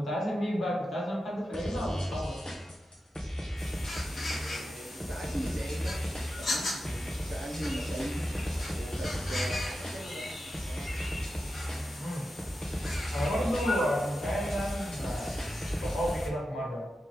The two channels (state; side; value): normal; both; correlation 0.90